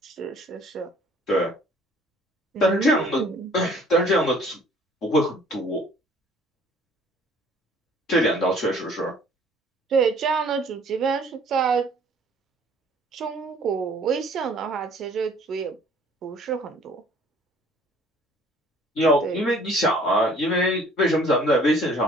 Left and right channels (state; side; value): normal; both; correlation 0.55